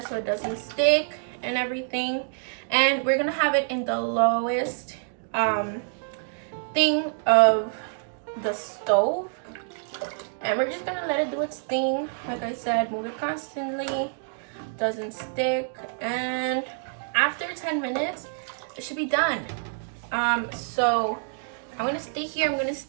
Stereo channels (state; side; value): silent; left; digital silence